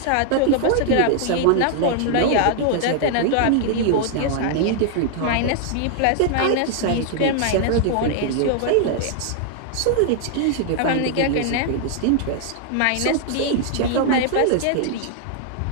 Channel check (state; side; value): different; both; correlation 0.00